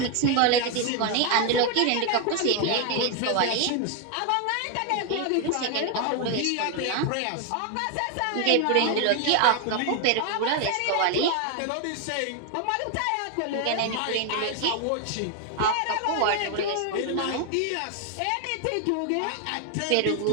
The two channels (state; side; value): different; both; correlation 0.01